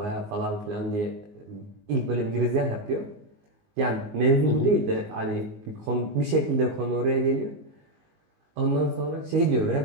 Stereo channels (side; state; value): left; late; 19 ms